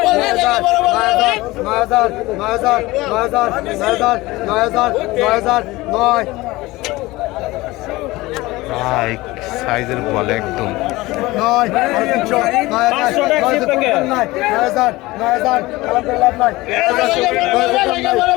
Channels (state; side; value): quieter; right; 20.0 dB